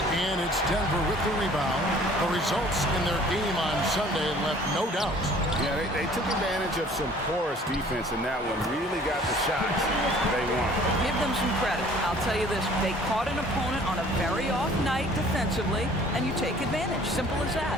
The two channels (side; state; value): both; normal; correlation 0.53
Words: and it's Denver with the rebound. The results in their game on Sunday left no doubt. Yeah, they took advantage of some porous defense in that one. Really got the shots they wanted. Give them some credit. I'll tell you this. They caught an opponent on a very off night defensively, and you take advantage. Simple as